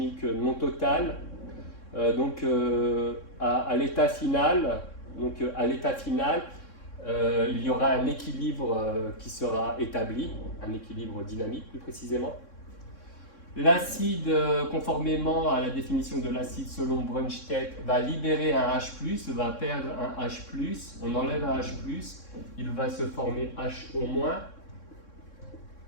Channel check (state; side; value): late; right; 3.6 ms